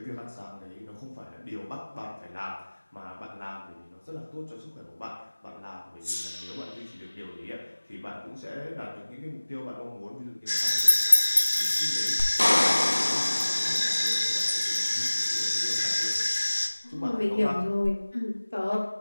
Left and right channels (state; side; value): inverted; both; correlation -1.00